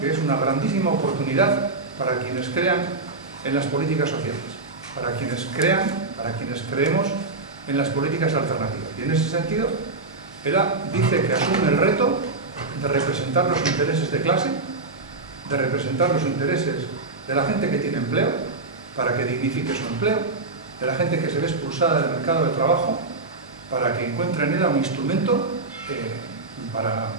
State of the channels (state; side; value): quieter; left; 3.5 dB